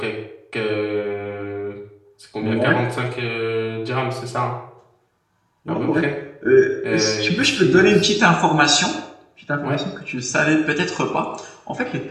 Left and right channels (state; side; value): identical; both; correlation 1.00